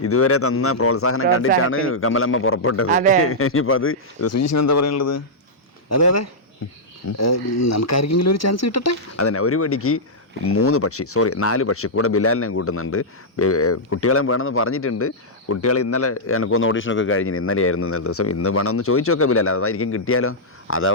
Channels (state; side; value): normal; both; correlation -0.09